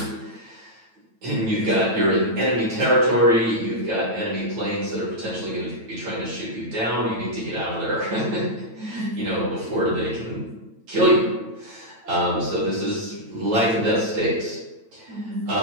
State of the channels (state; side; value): late; left; 9.0 ms